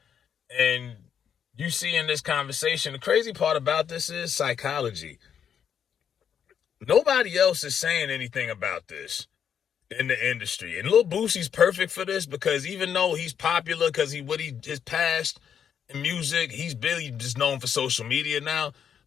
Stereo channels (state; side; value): quieter; right; 8.2 dB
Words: And you see in this conversation, the crazy part about this is psychology. Nobody else is saying anything about this in the industry. And Lil Boosie's perfect for this because even though he's popular because his past in music, he's really just known for social media now.